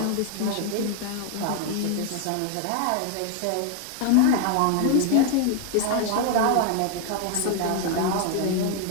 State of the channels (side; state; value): both; different; correlation 0.01